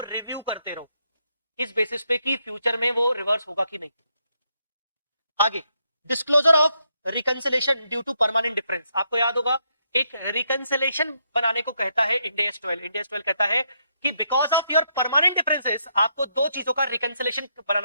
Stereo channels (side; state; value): both; inverted; correlation -0.77